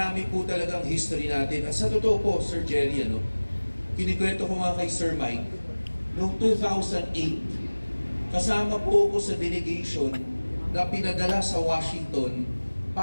po talagang history natin. At sa totoo po, Sir Jerry, kinikwento ko nga kay Sir Mike, noong 2008, kasama po ako sa delegation na pinadala sa Washington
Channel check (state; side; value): inverted; both; correlation -1.00